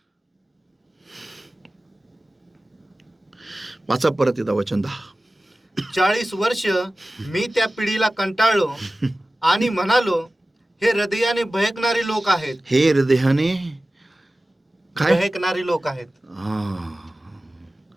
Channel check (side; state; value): both; normal; correlation 0.96